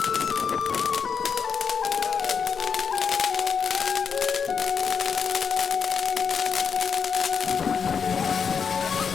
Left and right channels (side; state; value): right; quieter; 6.4 dB